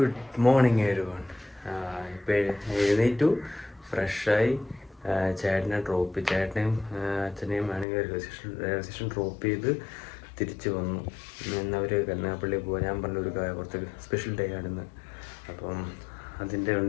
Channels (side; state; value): right; drops out; at 7.9 s